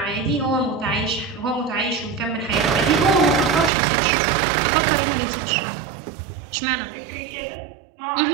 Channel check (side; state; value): left; drops out; at 3.7 s